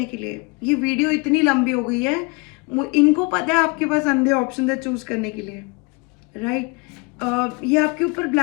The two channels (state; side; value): quieter; right; 29.2 dB